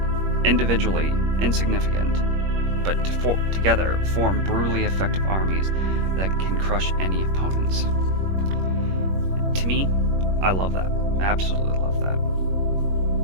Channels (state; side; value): late; left; 21 ms